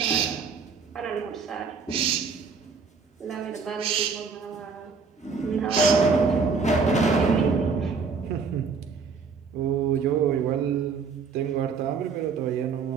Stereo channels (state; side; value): quieter; left; 5.2 dB